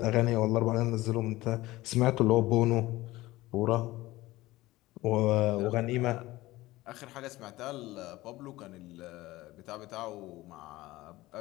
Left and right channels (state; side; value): quieter; right; 18.3 dB